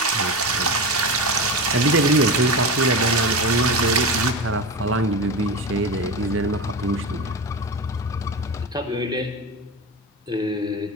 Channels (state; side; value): normal; both; correlation 0.22